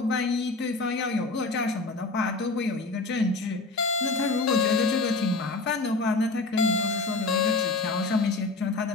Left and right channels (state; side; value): quieter; right; 3.6 dB